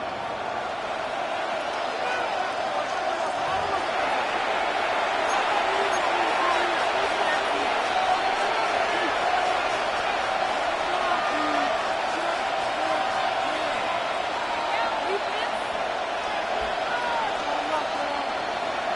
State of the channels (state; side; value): identical; both; correlation 1.00